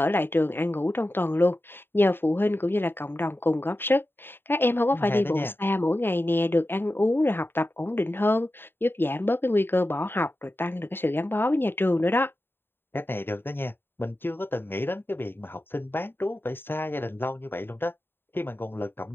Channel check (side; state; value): right; late; 0.10 ms